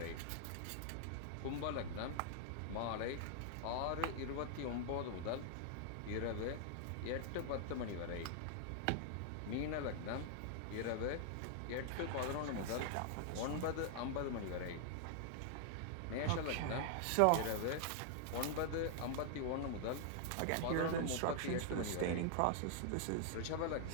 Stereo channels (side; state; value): both; different; correlation -0.01